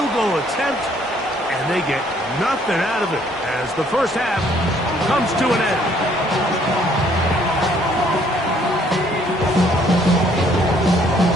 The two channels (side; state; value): both; normal; correlation 0.64